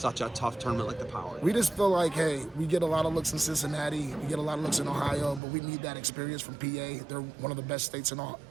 a tough tournament like the Powerade? We just feel like, hey, we get a lot of looks in Cincinnati. We get a lot of looks in Ohio, but we need that experience from PA. They're one of the best states in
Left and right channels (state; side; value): drops out; left; at 5.4 s